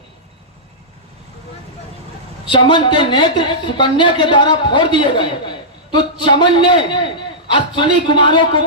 चमन के नेत्र सुकन्या के द्वारा फोड़ दिए गए, तो चमन ने अश्विनी कुमारों को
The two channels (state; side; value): normal; both; correlation -0.14